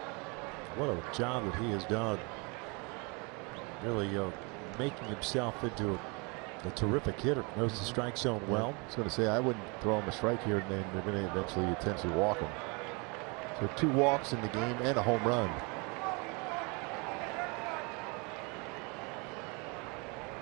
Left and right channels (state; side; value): quieter; left; 30.6 dB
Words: What a job that he has done. Really making himself into a terrific hitter. Knows the strike zone well. I was going to say, I wouldn't throw him a strike here, and then they're going to eventually potentially walk him. So 2 walks in the game and a home run.